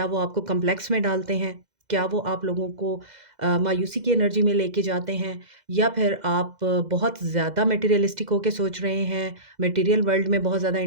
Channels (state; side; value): late; left; 2.0 ms